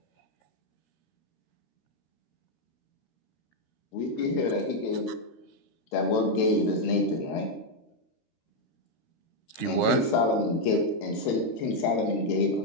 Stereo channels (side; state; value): right; late; 13 ms